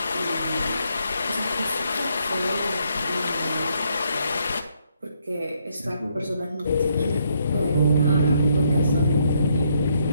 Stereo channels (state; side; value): inverted; both; correlation -0.73